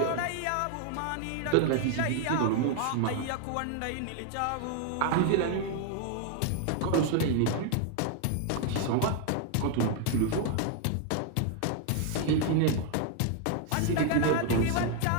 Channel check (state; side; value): different; both; correlation 0.00